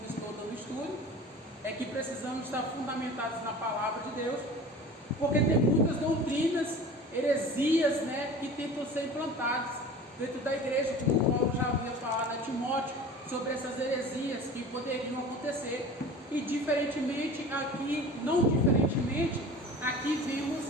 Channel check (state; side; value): normal; both; correlation 0.39